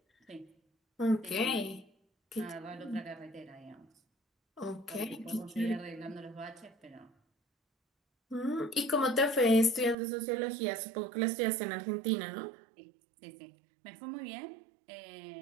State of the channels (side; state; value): left; drops out; at 10.0 s